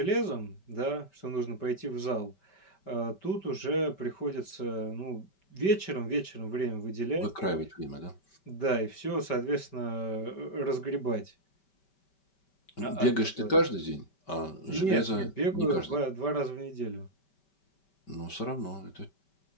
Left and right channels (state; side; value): late; right; 5.2 ms